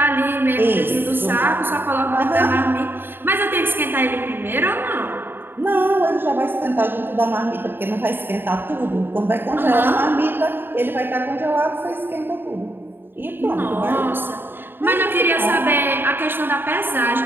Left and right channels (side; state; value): left; late; 0.099 ms